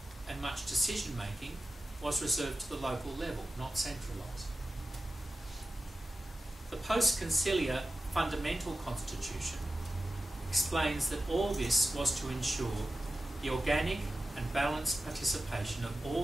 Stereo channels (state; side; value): normal; both; correlation 0.93